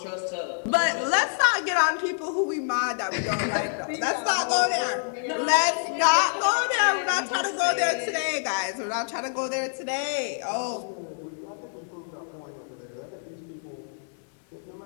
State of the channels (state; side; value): silent; right; digital silence